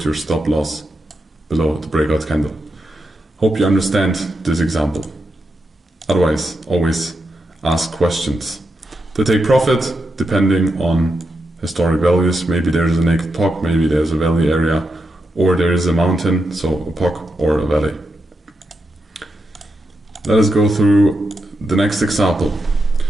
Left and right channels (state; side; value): normal; both; correlation 0.85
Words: your stop loss below the breakout candle. Hope you understand this example. Otherwise, always ask questions. To take profit, depending on historic values, maybe there's a naked POC, maybe there's a valley area, or there is a mountain, so a POC or a valley. Let us go through the next example.